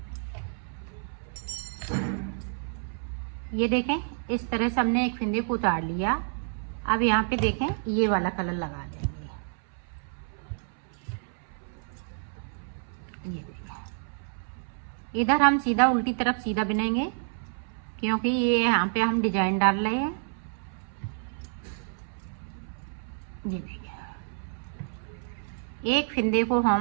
ये देखें इस तरह से हमने एक फिंदे को उतार लिया। अब यहाँ पे देखें ये वाला कलर लगा देंगे। ये देखें, इधर हम सीधा उल्टी तरफ सीधा बुनेंगे क्योंकि ये यहाँ पे हम डिजाइन डाल रहे हैं। ये देखें, एक फिंदे को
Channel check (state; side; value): silent; left; 59 dB below the other